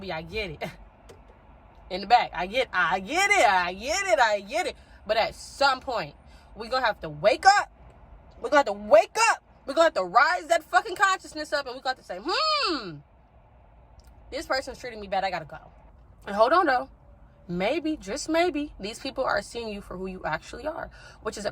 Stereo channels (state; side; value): identical; both; correlation 1.00